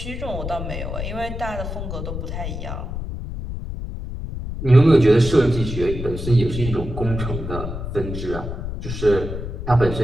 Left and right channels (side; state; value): left; noise; rumble, 6 dB below the sound